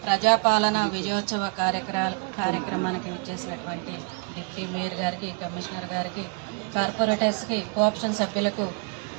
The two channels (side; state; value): left; quieter; 34.3 dB